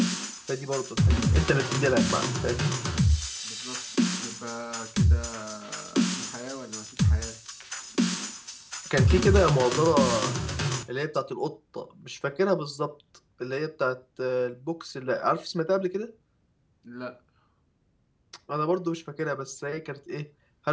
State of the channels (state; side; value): identical; both; correlation 1.00